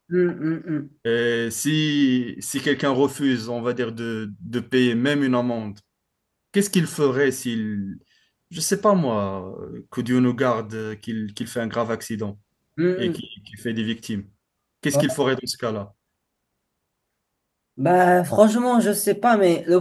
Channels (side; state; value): both; identical; correlation 1.00